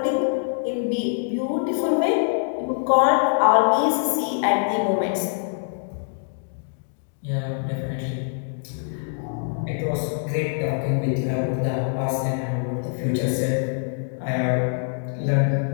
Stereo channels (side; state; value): right; silent; digital silence